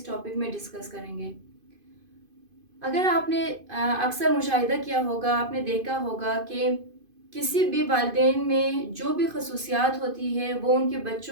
टॉपिक में डिस्कस करेंगे। अगर आपने अक्सर मुशाहिदा किया होगा, आपने देखा होगा कि किसी भी वालिदैन में जो भी खसूसियात होती है वो उनके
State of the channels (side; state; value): left; late; 2.5 ms